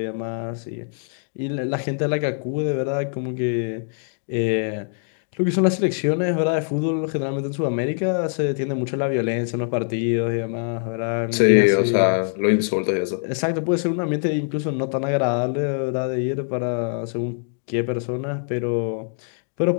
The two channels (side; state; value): right; silent; digital silence